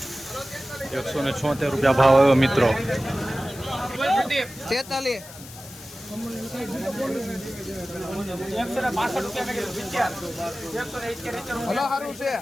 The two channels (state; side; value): noise; left; hiss, 16 dB below the sound